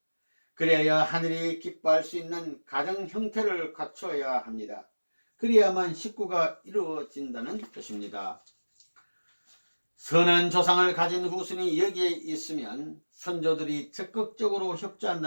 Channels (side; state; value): both; inverted; correlation -1.00